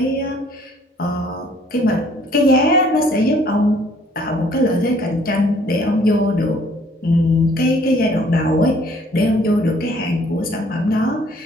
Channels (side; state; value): both; normal; correlation 0.60